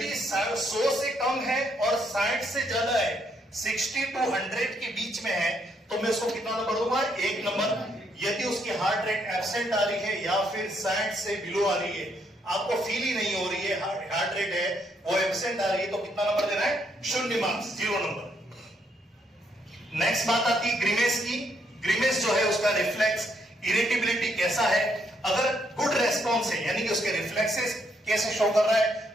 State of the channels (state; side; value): normal; both; correlation 0.74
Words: 100 से कम है और 60 से ज्यादा है, 60 to 100 के बीच में है, तो मैं उसको कितना नंबर दूंगा? 1 नंबर। यदि उसकी हार्ट रेट एब्सेंट आ रही है या फिर 60 से बिलो आ रही है, आपको फील ही नहीं हो रही है, हार्ट रेट है वो एब्सेंट आ रही है, तो कितना नंबर देना है? 0 मार्क्स, 0 नंबर। नेक्स्ट बात आती है ग्रीमेस की। ग्रीमेस जो है उसका रिफ्लेक्स इरिटेबिलिटी कैसा है। अगर गुड रेस्पॉन्स है, यानी कि उसके रिफ्लेक्सेस कैसे शो कर रहा है,